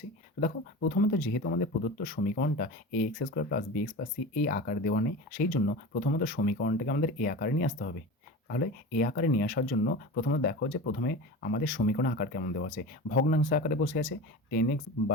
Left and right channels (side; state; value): both; normal; correlation 0.30